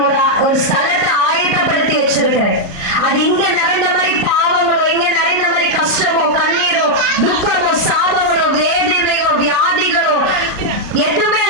ஒரு ஸ்தலத்தை ஆயத்தப்படுத்தி வச்சிருக்கிறேன். அது இங்க நிறைந்த மாதிரி பாவங்களோ, இங்க நிறைந்த மாதிரி கஷ்டமோ, கண்ணீரோ, துக்கமோ, சாபங்களோ, வேதனையோ, வியாதிகளோ எதுவுமே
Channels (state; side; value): late; left; 38 ms